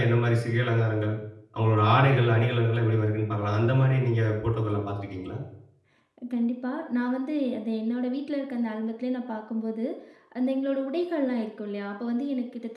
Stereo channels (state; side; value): identical; both; correlation 1.00